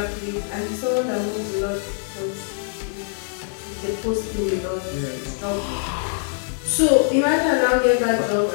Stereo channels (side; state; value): right; silent; digital silence